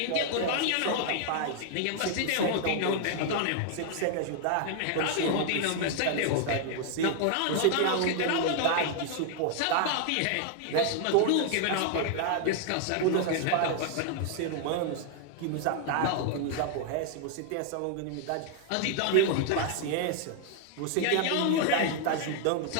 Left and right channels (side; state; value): both; different; correlation 0.00